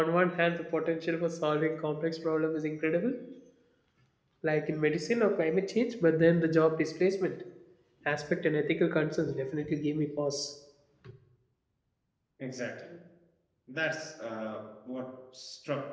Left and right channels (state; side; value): identical; both; correlation 1.00